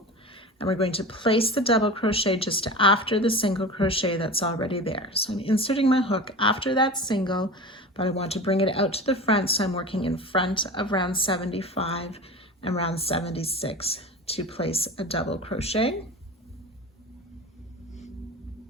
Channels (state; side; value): normal; both; correlation 0.32